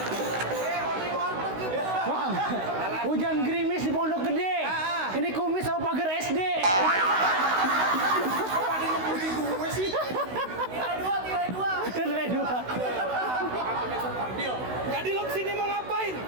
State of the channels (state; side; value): late; left; 16 ms